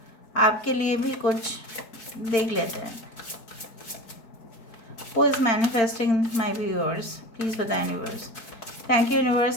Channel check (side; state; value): right; late; 4.4 ms